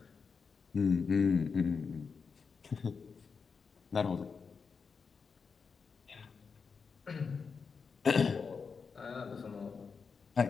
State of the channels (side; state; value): right; quieter; 5.4 dB